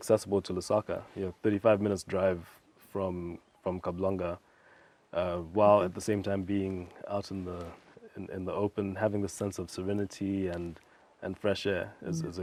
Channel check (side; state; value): both; identical; correlation 1.00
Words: to Lusaka, 35 minutes drive from Kablanga, while at the same time being out in the open, having the sense of serenity and fresh air is a